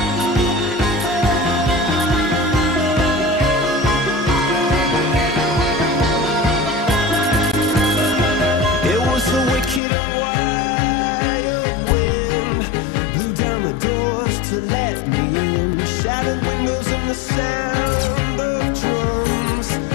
It was a wicked and wild wind, blew down the doors to let me in, shattered windows and the sound of drums.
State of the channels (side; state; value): right; drops out; at 9.8 s